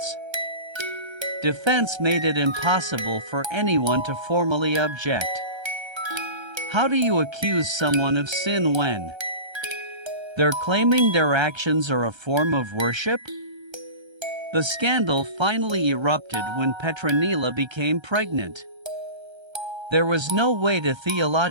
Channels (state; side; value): late; left; 1.3 ms